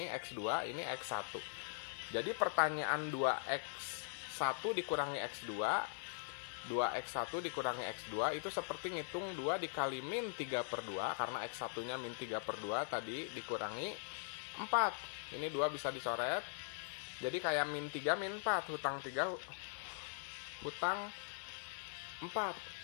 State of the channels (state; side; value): silent; right; digital silence